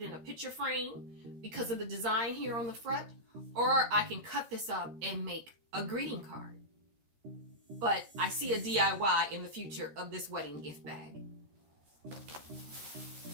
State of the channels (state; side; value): late; left; 13 ms